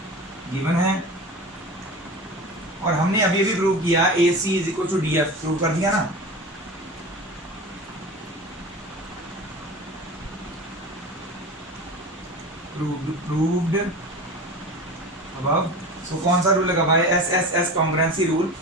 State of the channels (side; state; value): both; normal; correlation 0.31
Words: गिवन है। और हमने अभी अभी प्रूव किया AC is equal to DF, prove कर दिया ना। proved above। so कौन सा रूल लगा भाई, SSS congruency rule,